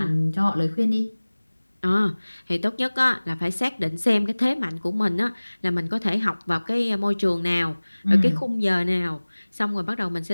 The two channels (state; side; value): inverted; both; correlation -1.00